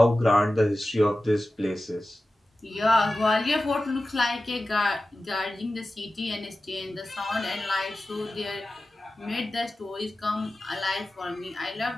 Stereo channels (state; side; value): normal; both; correlation 0.95